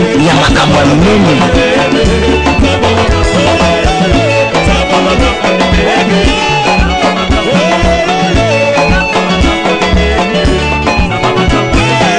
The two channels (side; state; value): both; identical; correlation 1.00